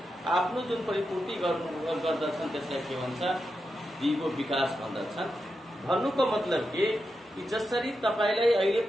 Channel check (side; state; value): both; normal; correlation 0.87